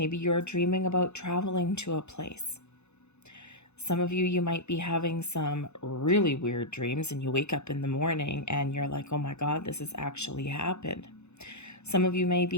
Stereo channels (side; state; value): right; late; 0.81 ms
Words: you're dreaming about traveling to a place. Some of you might be having some really weird dreams and you wake up in the morning and you're like, oh my God, this has actually happened. Some of you may